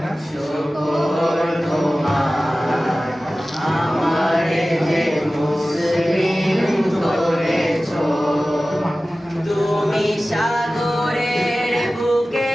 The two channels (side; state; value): both; normal; correlation 0.96